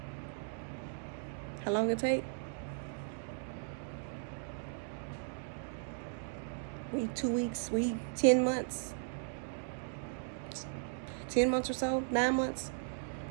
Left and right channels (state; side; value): silent; left; digital silence